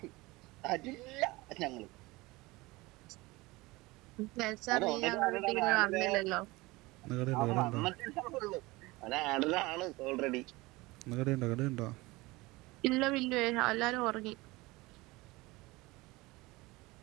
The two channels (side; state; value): left; quieter; 21.8 dB